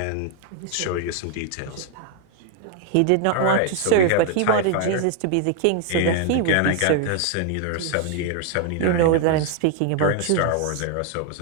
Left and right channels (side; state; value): both; different; correlation 0.00